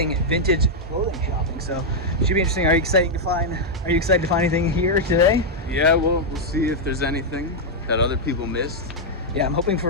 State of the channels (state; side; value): normal; both; correlation -0.03